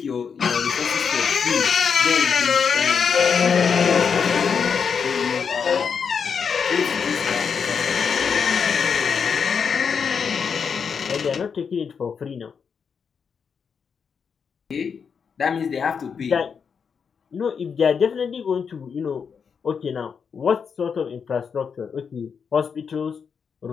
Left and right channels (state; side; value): quieter; right; 6.4 dB